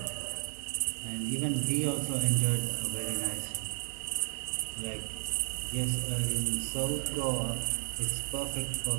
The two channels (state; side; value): silent; left; digital silence